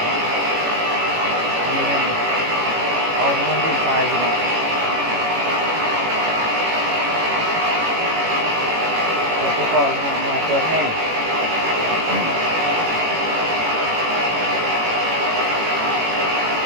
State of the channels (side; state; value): left; late; 18 ms